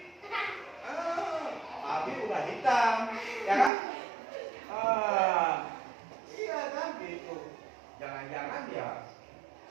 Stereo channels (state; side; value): drops out; left; at 3.7 s